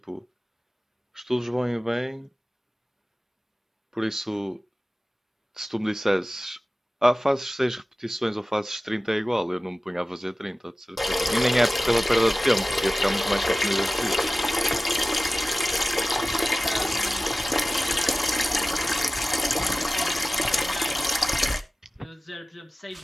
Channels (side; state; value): both; normal; correlation 0.96